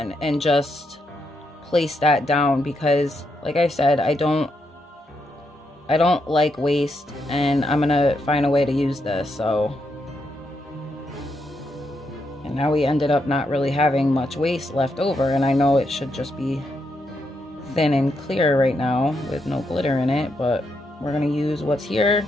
and just place that down because like I said, I don't like waste, and I'm going to find a way to use this. So, and now we ended up not really having much waste left over, and I know it should just be thin and clear right now with no glitter in it, but we're going to use what's here.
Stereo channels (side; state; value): both; normal; correlation 0.80